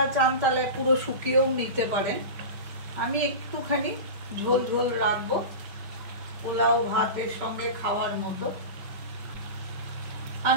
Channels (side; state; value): left; late; 5.2 ms